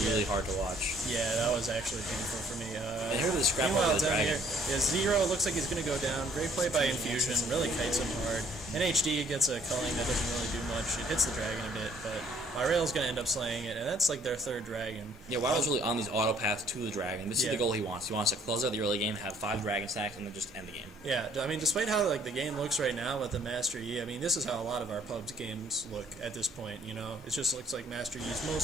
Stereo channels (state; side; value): normal; both; correlation 0.61